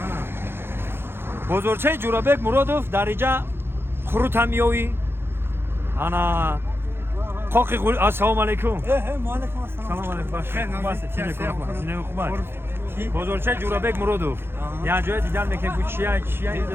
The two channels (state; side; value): late; left; 0.11 ms